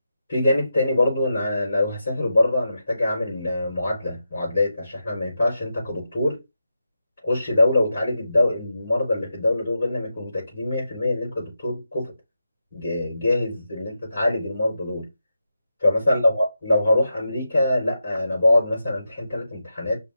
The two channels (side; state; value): both; inverted; correlation -0.88